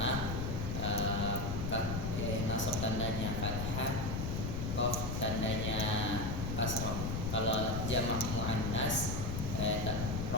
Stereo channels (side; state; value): left; noise; rumble, 2 dB below the sound